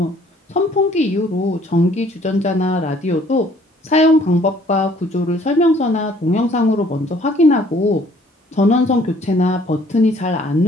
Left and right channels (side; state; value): both; normal; correlation 0.59